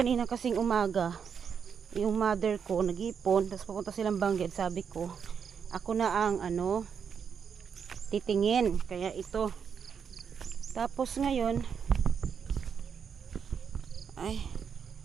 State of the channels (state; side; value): quieter; left; 6.9 dB